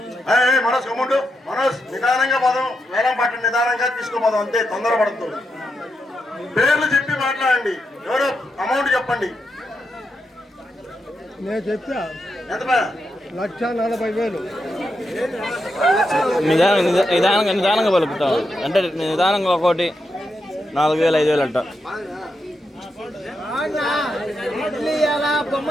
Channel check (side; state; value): both; normal; correlation 0.85